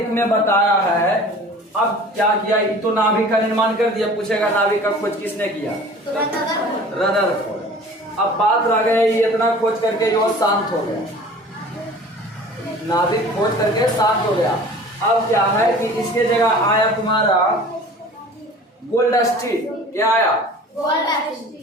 में बताया है, अब क्या किया, ये तो नाभिक का निर्माण कर दिया, पूछेगा नाभिक का खोज किसने किया, रदरफोर्ड। अब बात रह गई इतना खोज करके जो शांत हो गया, नाभिक खोज करके शांत हो गया। अब क्या है कि इसके जगह आया तुम्हारा गोल्डस्टीन। क्या आया?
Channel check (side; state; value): both; normal; correlation 0.44